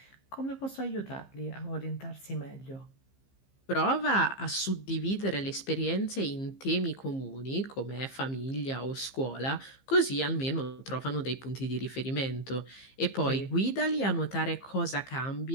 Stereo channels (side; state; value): right; late; 15 ms